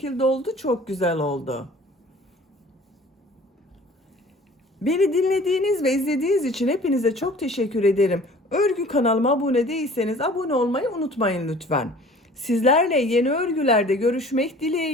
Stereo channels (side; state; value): both; normal; correlation 0.48